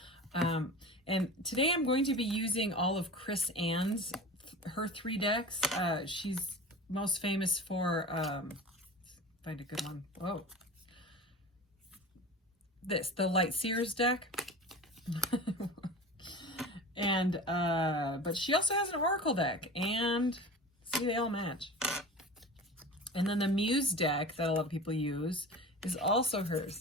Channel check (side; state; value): both; normal; correlation 0.34